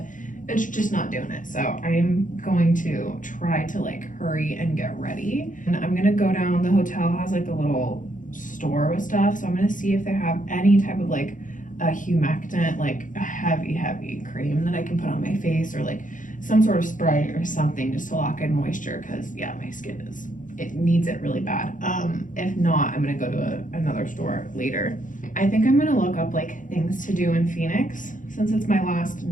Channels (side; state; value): right; late; 0.38 ms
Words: it's just not doing it. So I'm going to try to like hurry and get ready. And I'm gonna go down, the hotel has like a little store with stuff. So I'm gonna see if they have any type of like a humectant, like a heavy cream that I can put on my face, or like some sort of spray or something just to lock in moisture, because yeah, my skin it needs it really bad. If not, I'm gonna go to another store later. I think I'm gonna look up like things to do in Phoenix since it's my last